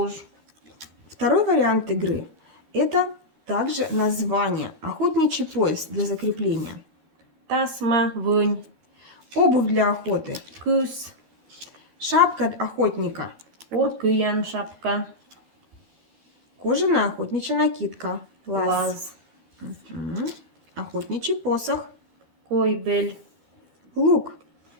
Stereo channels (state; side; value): late; left; 13 ms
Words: Второй вариант игры – это также название. Охотничий пояс для закрепления. тасма, вынь, Обувь для охоты. кыс, Шапка охотника. уркыян шапка, Кожаная охотничья накидка. Лаз. лаз, Мгм. Охотничий посох. койбель, Лук.